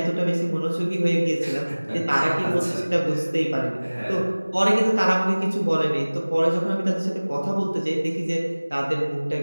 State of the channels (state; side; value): inverted; both; correlation -1.00